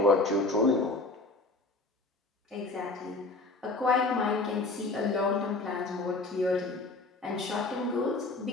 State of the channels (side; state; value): right; quieter; 3.2 dB